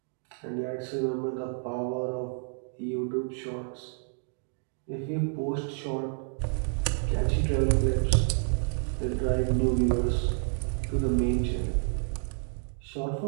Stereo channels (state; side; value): silent; left; 58 dB below the other